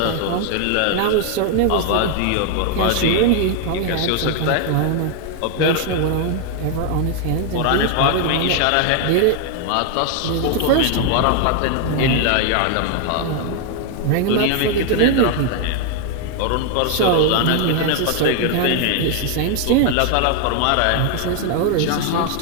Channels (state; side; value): different; both; correlation 0.00